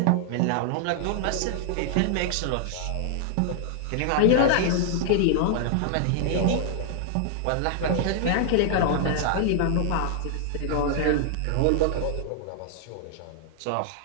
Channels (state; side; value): different; both; correlation -0.01